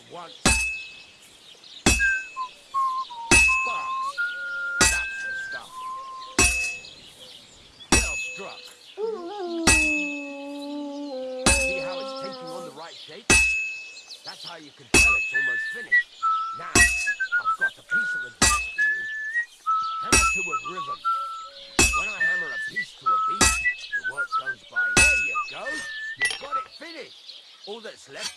want. Sparks. That's the stuff. Well struck. See how it's taking on the right shape? That's how you can tell it's almost finished. Now, I've got a piece of advice for you. Hammer to a rhythm. When I hammer a piece to a beat, the work goes by. There you go. You've got it finished. All that's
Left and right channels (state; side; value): identical; both; correlation 1.00